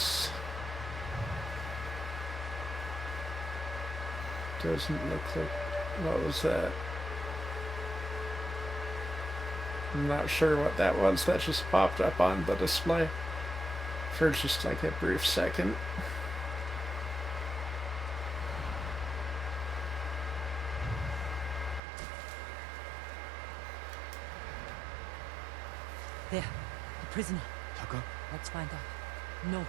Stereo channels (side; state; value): left; drops out; at 21.8 s